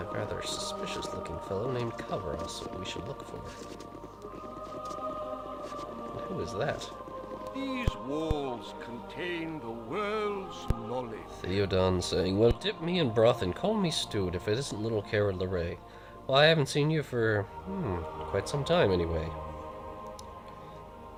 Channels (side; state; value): both; identical; correlation 1.00